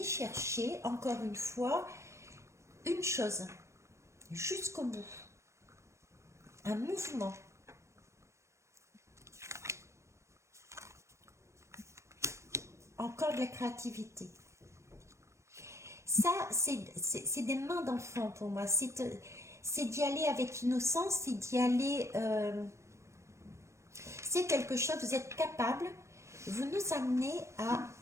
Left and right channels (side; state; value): left; late; 0.14 ms